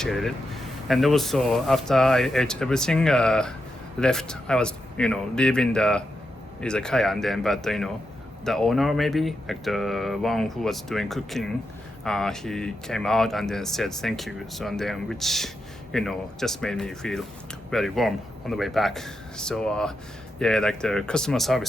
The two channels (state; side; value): normal; both; correlation 0.86